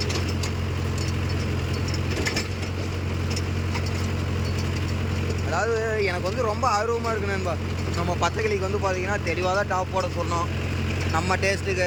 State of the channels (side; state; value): both; identical; correlation 1.00